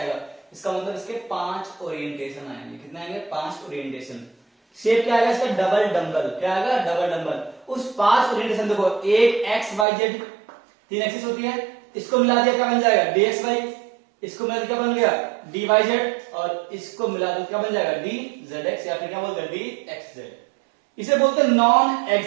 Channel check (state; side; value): drops out; left; at 9.9 s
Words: इसका मतलब इसके 5 ओरिएंटेशन आएंगे, कितने आएंगे 5 ओरिएंटेशन। शेप क्या आएगा इसका डबल डंबल, क्या आएगा डबल डंबल। उस 5 ओरिएंटेशन देखो एक x y z 3 एक्सिस होती है, इसको मिला दिया क्या बन जाएगा dxy, इसको मिला क्या बन गया dyz, और इसको मिला दो क्या बन जाएगा dzx, या फिर क्या बोलते हैं dxz। इसे बोलते हैं नॉन